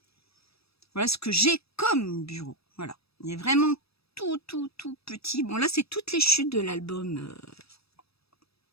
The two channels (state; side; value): late; right; 0.78 ms